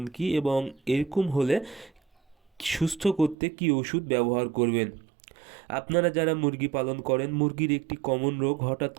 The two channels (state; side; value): drops out; left; at 3.4 s